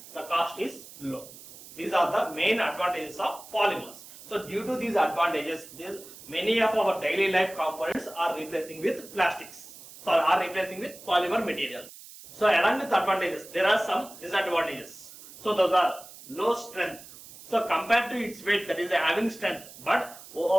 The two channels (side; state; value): right; noise; hiss, 17 dB below the sound